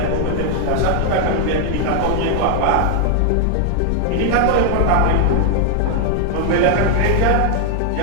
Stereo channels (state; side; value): different; both; correlation 0.00